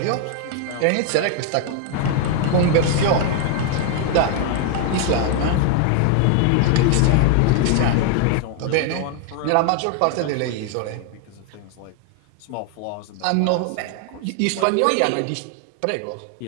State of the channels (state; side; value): different; both; correlation 0.00